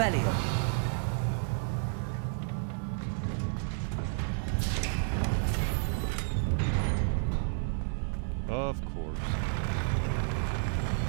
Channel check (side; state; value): left; silent; digital silence